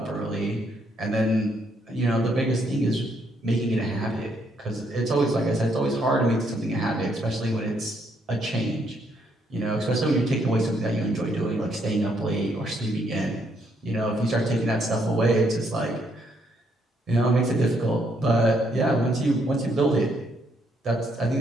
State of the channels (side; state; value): both; normal; correlation 0.72